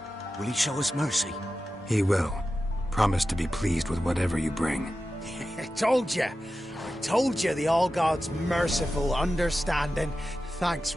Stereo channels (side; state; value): both; normal; correlation 0.93